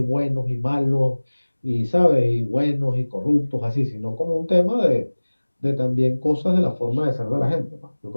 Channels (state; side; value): inverted; both; correlation -1.00